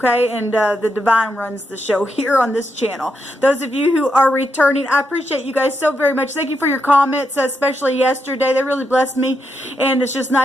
And the Divine runs the show here on this channel. Those of you who are returning, I appreciate you guys so very much. Thank you for your comments, especially yesterday. They really blessed me, and it's just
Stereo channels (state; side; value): normal; both; correlation 0.82